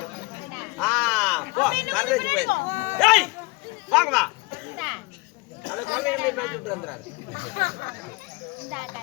போ வரதேச்சு போய் ஏய் வாங்க வா அத கொள்ளையில மேட்ச் விட்டு வந்தாரு.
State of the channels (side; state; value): right; quieter; 25.3 dB